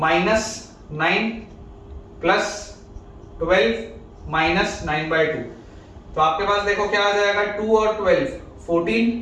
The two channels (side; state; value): both; identical; correlation 1.00